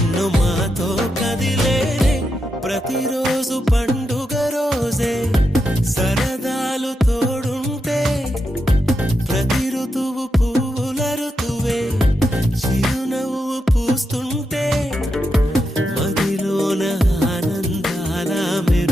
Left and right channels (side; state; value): both; normal; correlation 0.85